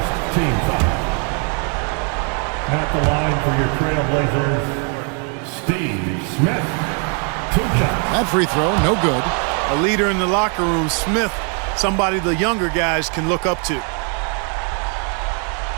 team foul. At the line for your Trailblazers, Steve Smith. 2 shots. That free throw, no good. A leader in the locker room, Smith, somebody the younger guys can look up to.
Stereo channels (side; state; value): left; quieter; 39.6 dB